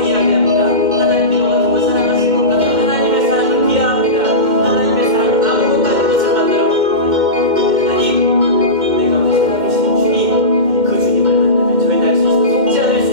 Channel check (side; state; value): left; late; 2.1 ms